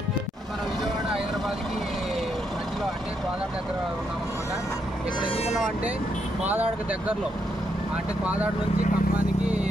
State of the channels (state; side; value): normal; both; correlation 0.78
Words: మన విజయవాడ హైదరాబాద్కి మధ్యలో అంటే కోదాడ దగ్గర ఉన్నామన్నమాట. ఇక్కడ ఎందుకున్నాం అంటే కోదాడకి దగ్గరలో అంటే కోదాడ నుంచి ఖమ్మానికి